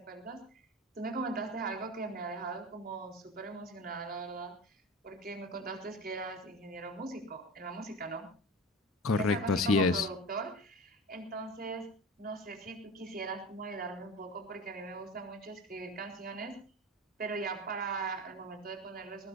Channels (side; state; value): both; normal; correlation 0.31